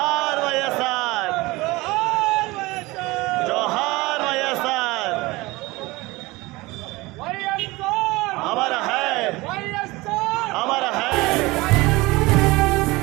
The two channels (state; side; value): quieter; left; 21.7 dB